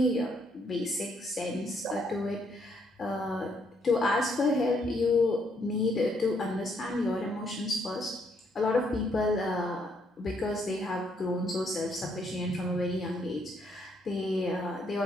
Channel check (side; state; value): both; normal; correlation 0.72